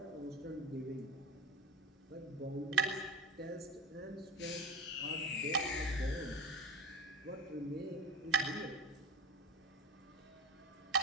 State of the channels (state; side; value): normal; both; correlation 0.31